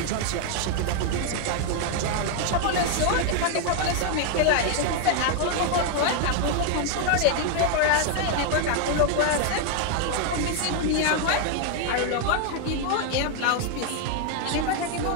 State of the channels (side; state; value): both; different; correlation 0.00